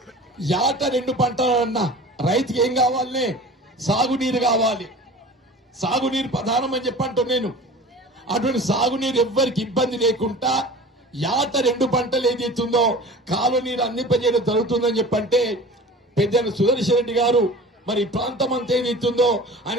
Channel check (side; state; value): both; normal; correlation 0.39